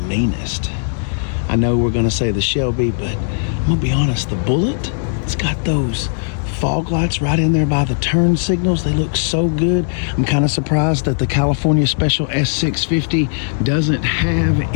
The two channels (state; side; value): silent; right; digital silence